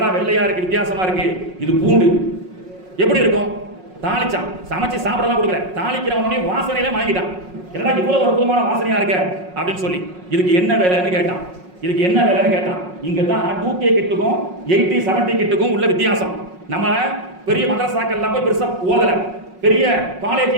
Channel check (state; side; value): late; left; 5.5 ms